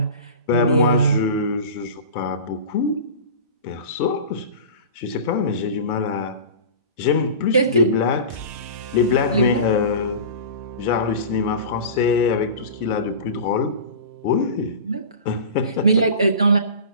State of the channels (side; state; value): both; inverted; correlation -0.34